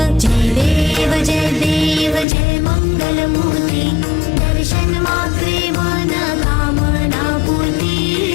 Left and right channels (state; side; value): drops out; right; at 2.2 s